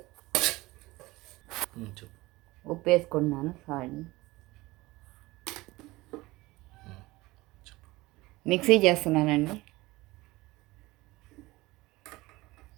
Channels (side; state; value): left; quieter; 20.4 dB